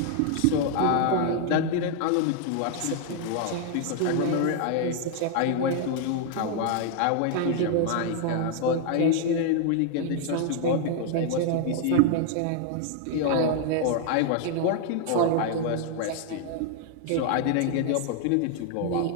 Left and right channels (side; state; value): both; different; correlation 0.00